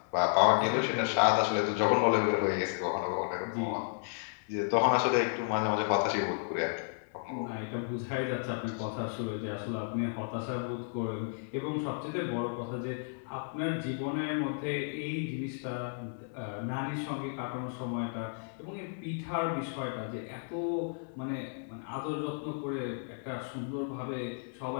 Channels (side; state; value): right; silent; digital silence